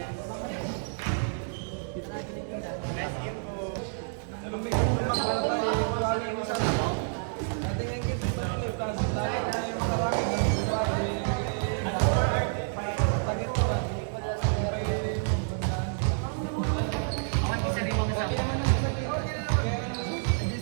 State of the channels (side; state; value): left; silent; 59 dB below the other